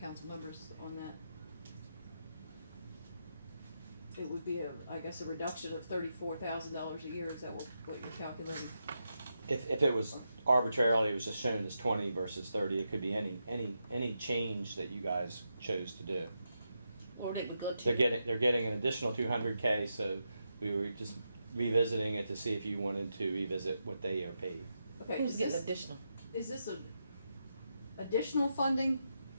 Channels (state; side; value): inverted; both; correlation -0.85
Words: members on that? It would be I guess a reduction of $34,000 a year. Is that what you're calculating? If it was arbitrarily, it was just shown as 20 versus 30. It could be any change that you guys chose to do. Or they would go to. They're getting an additional 200K. So we were just revisiting it to see if you wanted to revisit what they are paid. Okay, Who's getting additional? Is this a additional funding